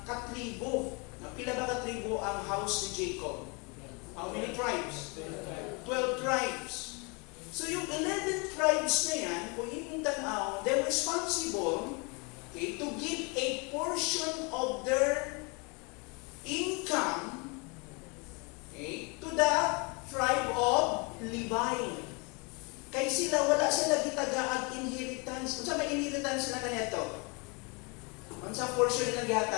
katribo. Pila ba katribo ang house ni Jacob? How many tribes? 12 tribes. So yung 11 tribes na yan, kung imong tanaw, they're responsible, okay, to give a portion of their income, okay, to the tribe of Levi. Kay sila, wala sila gitagaag inheritance. Unsa may inheritance na kanyato? Unsa portion nila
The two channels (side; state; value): right; quieter; 31.1 dB